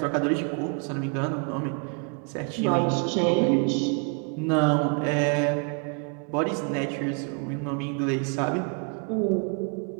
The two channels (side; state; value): left; quieter; 38.0 dB